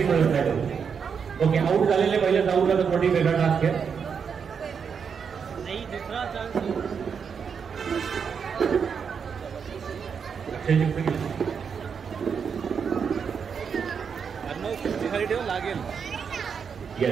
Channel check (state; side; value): quieter; left; 6.5 dB